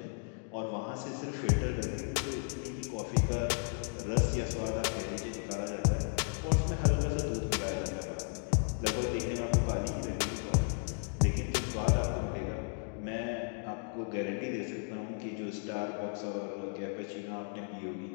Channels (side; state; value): right; silent; 55 dB below the other